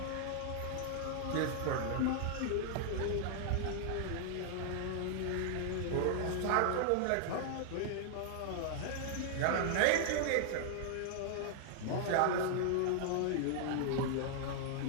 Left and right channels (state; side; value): different; both; correlation -0.01